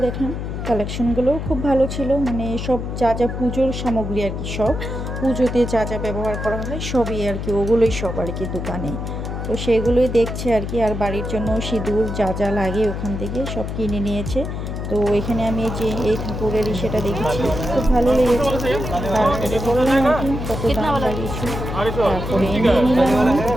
দেখলাম কালেকশনগুলোও খুব ভালো ছিল, মানে সব যা যা পুজোর সামগ্রী আর কি, সব পুজোতে যা যা ব্যবহার করা হয় সবই আর কি, ওগুলোই সব আর কি দোকানে। তো সেগুলোই দেখছে আর কি। আর বাড়ির জন্য সিঁদুর যা যা লাগে ওখান থেকে সব কিনে নিয়েছে। তো এখানে আমি যে এই ঠাকুরের সেটা দেখেছি, খুব ভালো লেগেছে। তারপরে বললাম আর কি কত দাম লাগিয়েছি। তারপরে নিয়ে নিলাম আমি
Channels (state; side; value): noise; left; hum, 5 dB below the sound